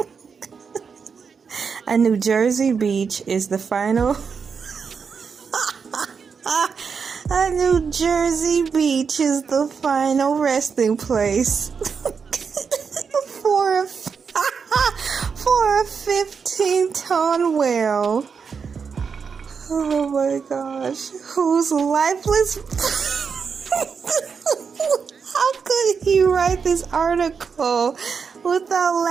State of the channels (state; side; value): quieter; left; 5.9 dB